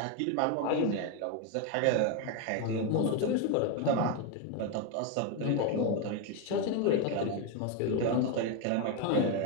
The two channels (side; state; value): both; different; correlation 0.02